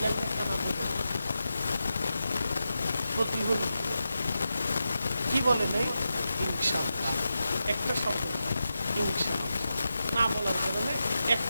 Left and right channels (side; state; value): both; inverted; correlation -0.90